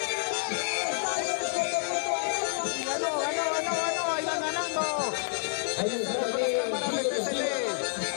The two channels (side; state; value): right; silent; 59 dB below the other